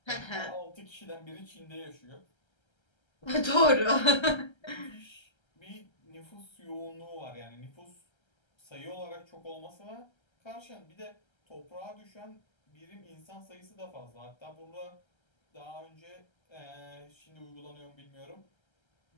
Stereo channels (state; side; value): late; right; 1.3 ms